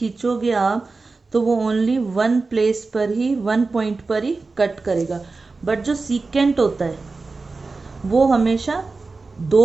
आप तो वो ओनली वन प्लेस पर ही, वन पॉइंट पर ही कट करेगा। बट जो सीकेंट होता है वो हमेशा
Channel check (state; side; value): quieter; left; 3.9 dB